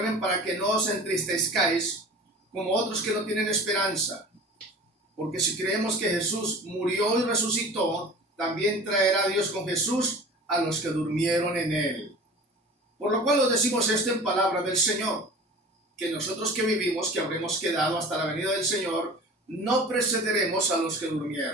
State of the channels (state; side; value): normal; both; correlation 0.40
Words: para que no os entristezcáis como otros que no tienen esperanza. Porque si creemos que Jesús murió y resucitó, también traerá Dios con Jesús a los que durmieron en él. Por lo cual os decimos esto en palabra del Señor, que nosotros que vivimos, que habremos quedado hasta la venida del Señor, no precederemos a los que